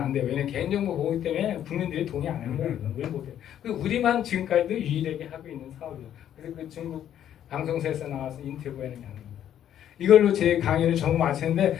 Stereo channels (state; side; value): quieter; right; 10.5 dB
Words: 돼요. 왜냐면 개인정보 보호 때문에 국민들이 동의 안 하는 거예요. 왜 못해요? 우리만 지금까지도 유일하게 하고 있는 사업이에요. 그래서 그 중국 방송사에서 나와서 인터뷰하는 게 아닙니다. 이걸로 제 강의를 전부 마치는데